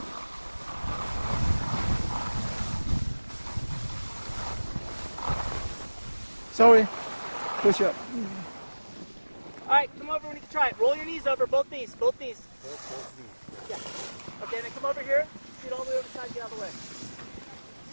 Sorry. Push up. All right, come over when you can try it. Roll your knees over, both knees, both knees. Yeah. Okay, then come over here. Scoot all the way over the side, get out of the way.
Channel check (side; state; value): both; inverted; correlation -1.00